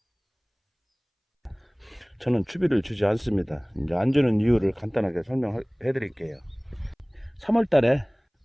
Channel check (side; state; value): both; identical; correlation 1.00